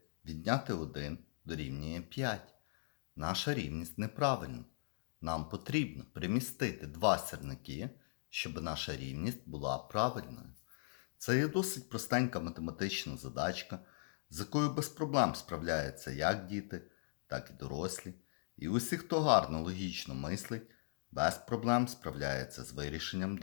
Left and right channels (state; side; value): silent; right; digital silence